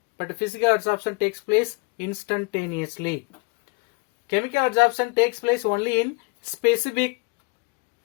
but physical absorption takes place instantaneously. Chemical absorption takes place only in specific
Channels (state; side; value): quieter; right; 30.3 dB